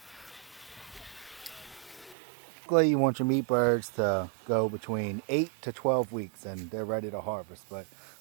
Typically you want your meat birds to go between 8 to 12 weeks and they're ready to harvest. But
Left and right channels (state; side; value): drops out; left; at 2.1 s